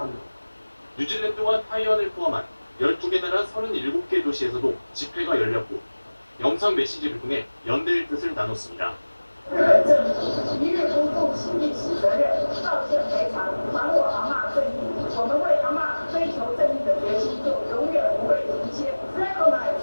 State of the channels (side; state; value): both; inverted; correlation -1.00